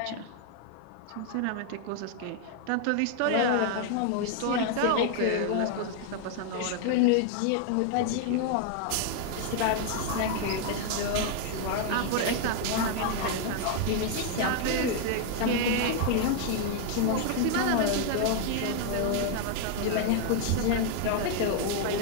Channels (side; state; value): both; different; correlation 0.00